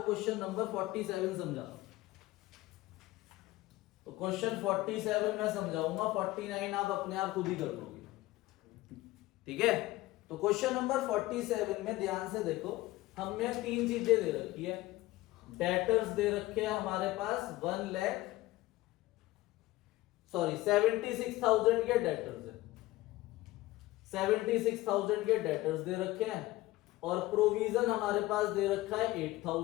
क्वेश्चन नंबर 47 समझा रहा हूं। तो क्वेश्चन 47 मैं समझाऊंगा, 49 आप अपने आप खुद ही कर लोगे। ठीक है, तो क्वेश्चन नंबर 47 में ध्यान से देखो, हमें 3 चीजें दे रखी है। डेटर्स दे रखे हैं हमारे पास 76,000 के डेटर्स है, 76,000 के डेटर्स दे रखे हैं, और प्रोविजन हमारे पास दे रखा है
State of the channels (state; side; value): quieter; right; 18.0 dB